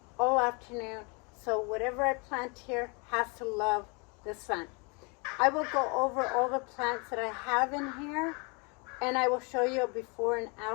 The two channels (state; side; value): quieter; right; 31.7 dB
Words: all afternoon, so whatever I plant here has to love the sun. I will go over all the plants that I have in here, and I will show you a before and